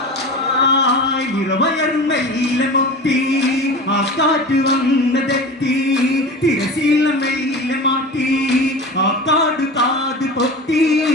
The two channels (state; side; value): normal; both; correlation 0.32